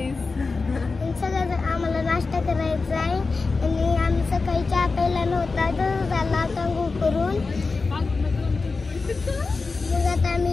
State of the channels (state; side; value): quieter; right; 4.1 dB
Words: आम्हाला नाश्ता करायचा आहे. आणि आम्ही सकाळी चहा प्यायला नव्हता, तर झाला आता करून. मग आता